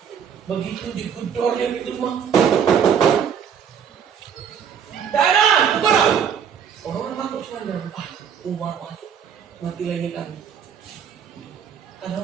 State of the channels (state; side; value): quieter; left; 7.7 dB